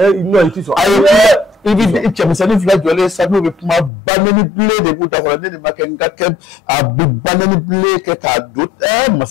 non i tɛ sɔn. a ye kun i bɛ cɛmisɛnnin fila jɔlen sa n'o bɛ kuma banɛni bilen de b'u da kɔrɔ ne de ma kɛ n ka kɛ a bɛ banɛni bilen kɛ k'a don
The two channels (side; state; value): right; drops out; at 3.9 s